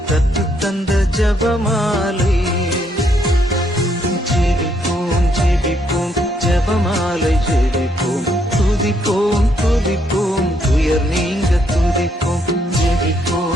கற்றுத்தந்த ஜபமாலை. ஜெபிப்போம் ஜெபிப்போம் ஜபமாலை ஜெபிப்போம், துதிப்போம் துதிப்போம் துயர் நீங்க துதிப்போம்.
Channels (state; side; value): normal; both; correlation 0.73